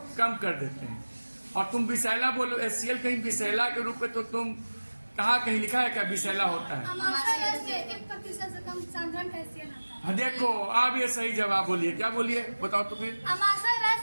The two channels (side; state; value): both; inverted; correlation -1.00